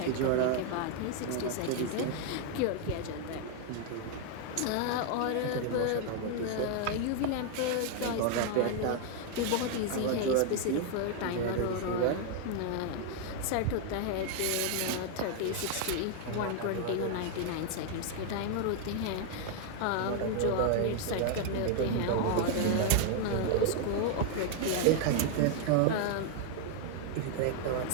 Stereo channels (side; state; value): both; different; correlation 0.00